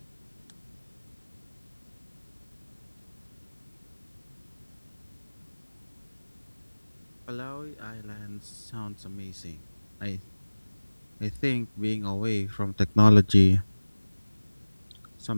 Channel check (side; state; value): both; inverted; correlation -1.00